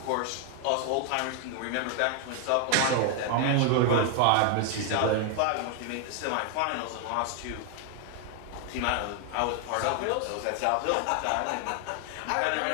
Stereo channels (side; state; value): both; different; correlation 0.00